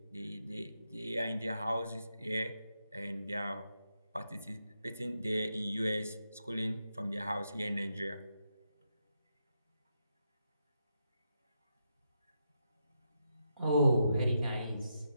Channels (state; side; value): inverted; both; correlation -0.83